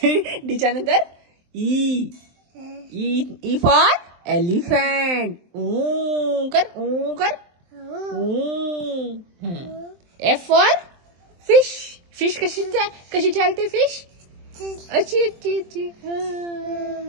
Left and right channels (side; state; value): left; late; 23 ms